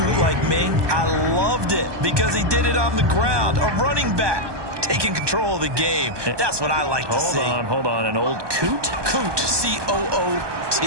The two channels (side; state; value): left; late; 1.2 ms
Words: like me, I loved it because he did it on the ground. A running back taking control of the game. That's what I like to see. Hold on. An old coot? Coot, C-O-O-T.